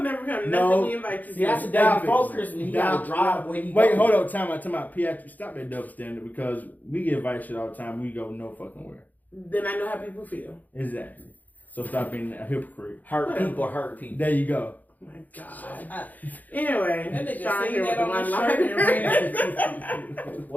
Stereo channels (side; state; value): right; late; 0.081 ms